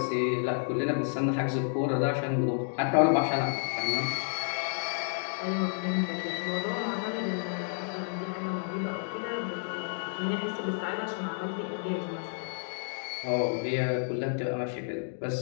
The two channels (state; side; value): silent; right; digital silence